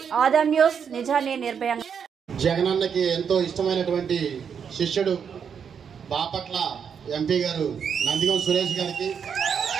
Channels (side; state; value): left; quieter; 7.2 dB